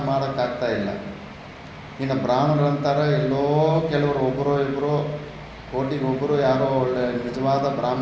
ಮಾಡೋಕ್ಕಾಗ್ತಾ ಇಲ್ಲ. ಇನ್ನು ಬ್ರಾಹ್ಮಣರಂತಾರೆ ಎಲ್ಲೋ ಕೆಲವರು, ಒಬ್ಬರೋ ಇಬ್ಬರು, ಕೋಟಿಗೊಬ್ಬರು ಯಾರೋ ಒಳ್ಳೆ ನಿಜವಾದ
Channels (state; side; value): identical; both; correlation 1.00